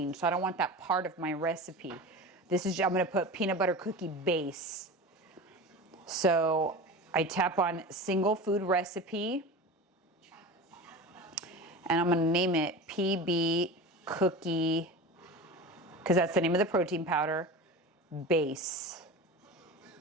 so I don't want that part of my recipe. I'm gonna put peanut butter cookie base. So I tap on single food recipe, and I'm gonna name it PB cookie, because that's the name of the protein powder, base.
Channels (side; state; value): both; normal; correlation 0.31